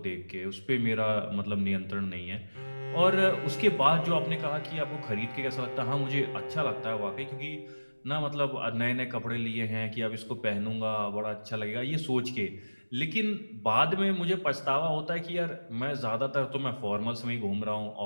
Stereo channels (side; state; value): both; inverted; correlation -1.00